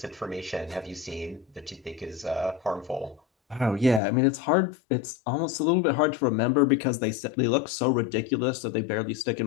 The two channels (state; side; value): drops out; right; at 4.0 s